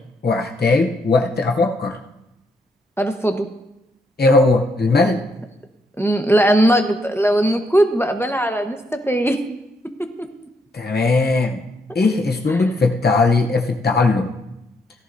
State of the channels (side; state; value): both; normal; correlation 0.75